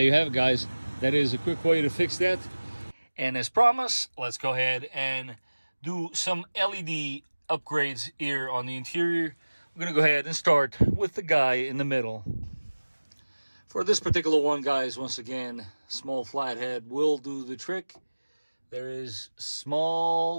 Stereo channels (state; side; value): inverted; both; correlation -1.00